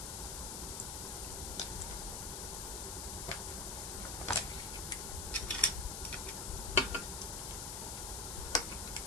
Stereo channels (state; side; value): noise; left; hiss, 3 dB below the sound